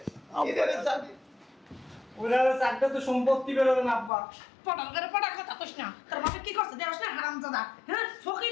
এটারে জানি। ওরা চারটা তো সম্পত্তি বেরোবে না আব্বা। পটাল করে পটাল কথা কইস না। তোর বাবা কি করছে দেওস না হারামজাদা? হ্যাঁ,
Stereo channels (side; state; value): right; drops out; at 4.1 s